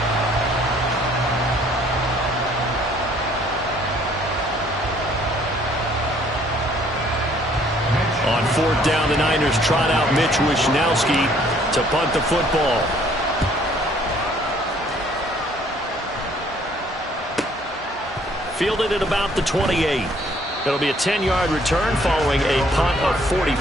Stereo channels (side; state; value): both; normal; correlation 0.61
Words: On 4th down, the Niners trot out Mitch Wishnowski to punt the football. Fielded at about the 28. It'll be a 10-yard return following a punt of